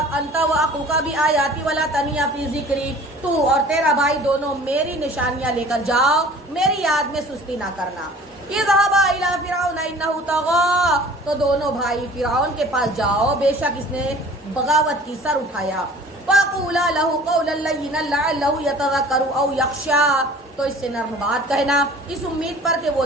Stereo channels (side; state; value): both; normal; correlation 0.47